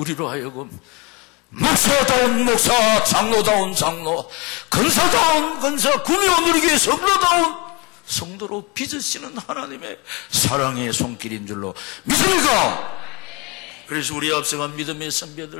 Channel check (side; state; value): right; quieter; 26.6 dB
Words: 하여금 목사다운 목사, 장로다운 장로, 근사다운 근사, 구미호 누리교회 성도다운 성도로 빚으시는 하나님의 사랑의 손길인 줄로 믿습니까? 그래서 우리 앞서간 믿음의